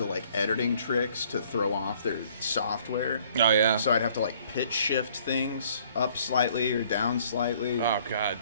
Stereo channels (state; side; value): inverted; both; correlation -0.60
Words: of like editing tricks to throw off their software. Oh yeah. So I'd have to like pitch shift things up slightly or down slightly. Oh god.